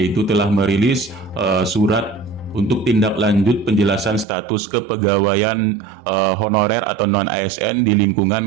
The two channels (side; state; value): left; drops out; at 4.2 s